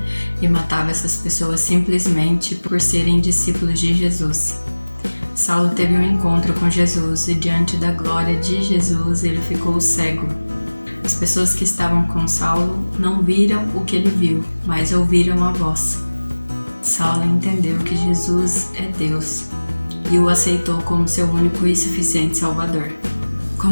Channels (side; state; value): both; inverted; correlation -1.00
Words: e matava essas pessoas simplesmente por serem discípulos de Jesus. Saulo teve um encontro com Jesus e diante da glória de Jesus ele ficou cego. As pessoas que estavam com Saulo não viram o que ele viu, mas ouviram a voz. Saulo entendeu que Jesus é Deus e o aceitou como seu único e suficiente Salvador.